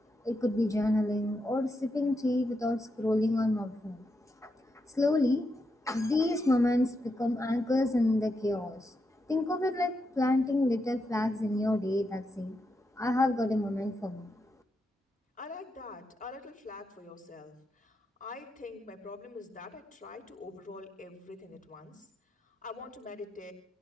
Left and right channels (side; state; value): both; normal; correlation 0.84